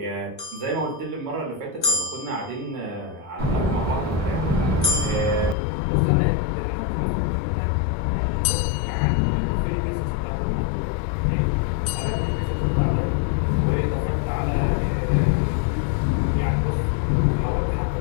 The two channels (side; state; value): right; drops out; at 5.6 s